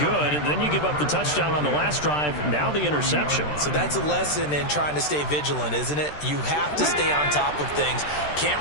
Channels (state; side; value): late; right; 13 ms